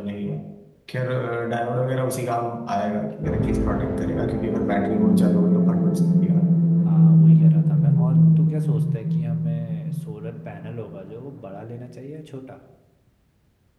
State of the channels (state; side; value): identical; both; correlation 1.00